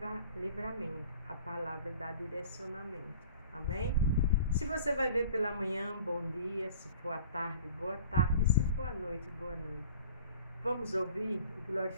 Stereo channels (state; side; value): inverted; both; correlation -0.46